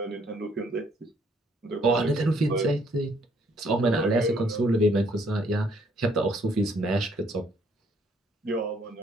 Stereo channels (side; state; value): both; normal; correlation 0.66